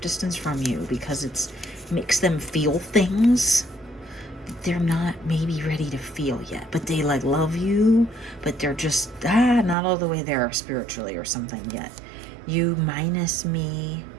from you because it makes them feel things that they're not maybe ready to feel yet. But they love you, but they're just not all the way there spiritually or something yet. You minus me.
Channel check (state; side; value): drops out; left; at 9.8 s